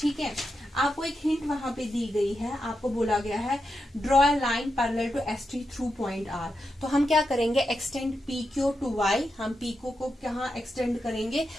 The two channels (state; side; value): normal; both; correlation 0.87